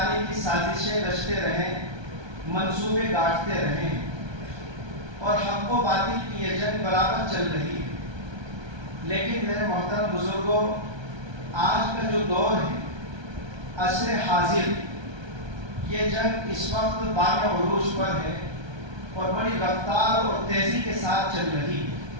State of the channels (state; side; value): late; left; 1.3 ms